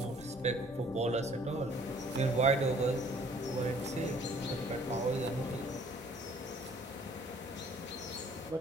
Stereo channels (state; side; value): normal; both; correlation 0.57